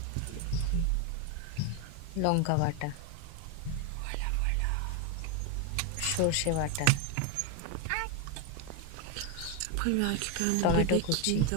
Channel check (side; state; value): both; different; correlation 0.02